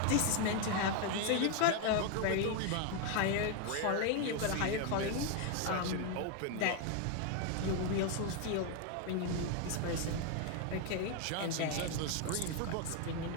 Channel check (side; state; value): both; different; correlation 0.01